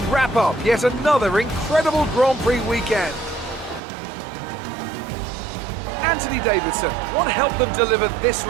wrap up yet another incredible Grand Prix weekend. Anthony Davidson, what helped them deliver this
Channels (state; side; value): drops out; left; at 3.8 s